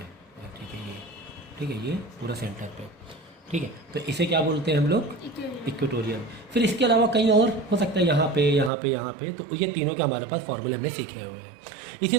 ठीक है, ये पूरा सेंटर पे, ठीक है। तो इसे क्या बोलते हैं हम लोग, इक्वेटोरियल। फिर इसके अलावा कहीं और हो सकता है, यहाँ पे, तो ये तीनों के हमारे पास फॉर्मूले हमने सीखे हुए हैं। इसी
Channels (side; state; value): left; drops out; at 8.7 s